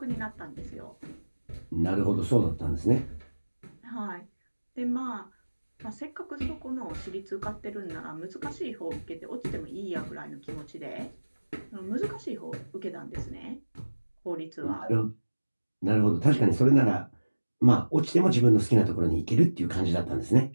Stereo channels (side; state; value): both; inverted; correlation -1.00